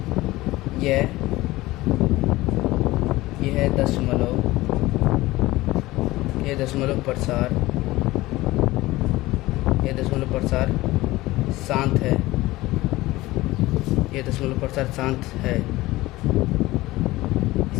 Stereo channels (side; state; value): right; quieter; 18.6 dB